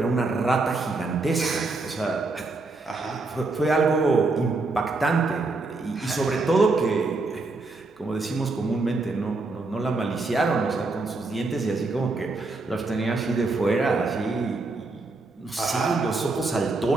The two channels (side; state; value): left; quieter; 3.5 dB